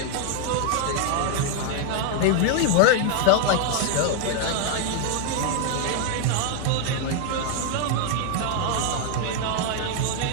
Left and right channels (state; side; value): different; both; correlation 0.00